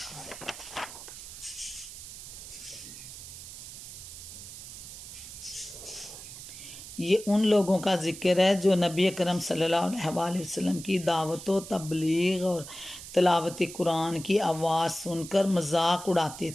है। ये उन लोगों का जिक्र है जो नबी अकरम सल्लल्लाहु अलैहि वसल्लम की दावत व तबलीग और तिलावत कुरान की आवाज़ सुनकर मजाक उड़ाते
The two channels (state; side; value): noise; right; hiss, 12 dB below the sound